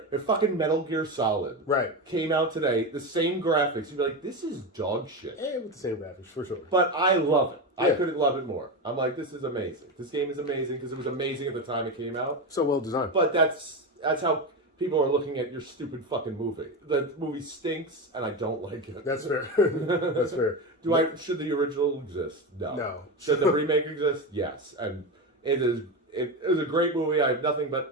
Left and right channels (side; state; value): both; normal; correlation 0.17